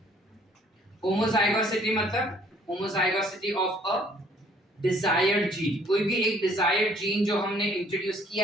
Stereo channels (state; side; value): normal; both; correlation 0.60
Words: Homozygosity मतलब homozygosity of a desired gene. कोई भी एक डिजायर्ड जीन जो हमने इंट्रोड्यूस